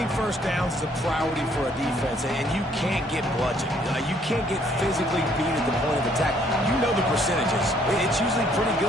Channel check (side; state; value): both; normal; correlation 0.65